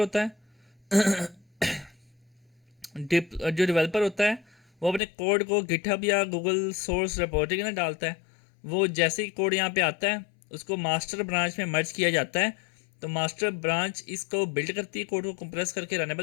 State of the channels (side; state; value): right; drops out; at 5.0 s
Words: है जो डेवलपर होता है वो अपने कोड को गिटहब या गूगल सोर्स रिपोजिटरी में डालता है। वो जैसे ही कोड यहाँ पे आता है उसको मास्टर ब्रांच में मर्ज किया जाता है। तो मास्टर ब्रांच इसको बिल्ड करती है, कोड को कंप्रेस करके